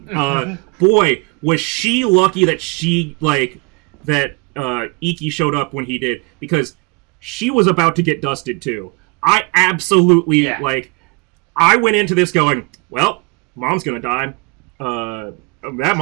Boy, was she lucky that Iki showed up when he did, because she was about to get dusted too. I absolutely, I went into this going, well, mom's gonna die. That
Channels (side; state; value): left; quieter; 30.2 dB